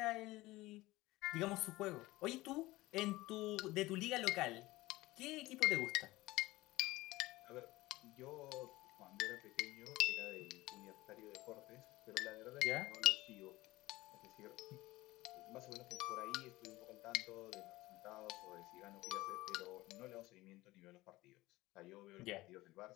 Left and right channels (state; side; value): quieter; right; 19.1 dB